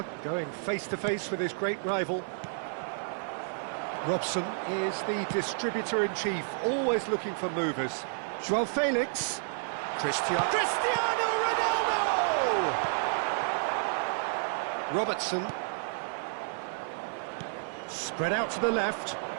going face-to-face with his great rival. Robson is the distributor-in-chief, always looking for movers. Joao Felix. Cristiano Ronaldo! Robertson. Spread out to the left.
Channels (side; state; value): left; silent; 56 dB below the other